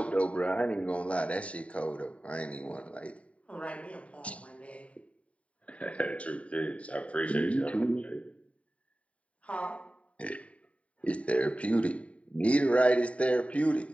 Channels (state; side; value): late; right; 0.065 ms